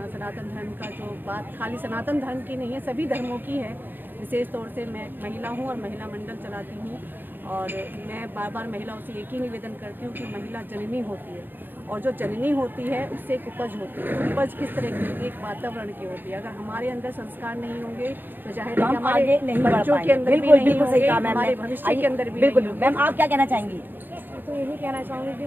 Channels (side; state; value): left; late; 0.093 ms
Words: धर्म का जो बात खाली सनातन धर्म की नहीं है, सभी धर्मों की है। विशेष तौर से मैं महिला हूँ और महिला मंडल चलाती हूँ और मैं बार बार महिलाओं से एक ही निवेदन करती हूँ कि महिला जननी होती है और जो जननी होती है उससे एक उपज होती है। उपज किस तरह की होती है? एक वातावरण की होती है। अगर हमारे अंदर संस्कार नहीं होंगे तो जाहिर है हमारे बच्चों के अंदर भी नहीं होंगे, हमारे भविष्य के अंदर भी बिल्कुल। मैम आप क्या कहना चाहेंगी? तो यही कहना चाहूँगी कि